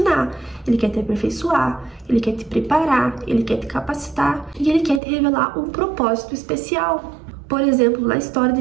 Ele quer te aperfeiçoar, Ele quer te preparar, Ele quer te capacitar e Ele quer te revelar um propósito especial. Por exemplo, na história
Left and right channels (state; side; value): drops out; left; at 5.0 s